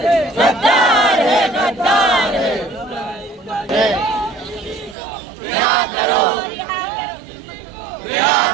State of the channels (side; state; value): left; drops out; at 5.0 s